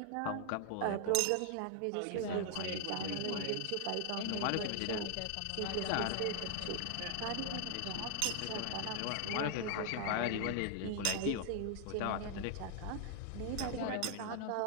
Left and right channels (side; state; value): both; different; correlation 0.00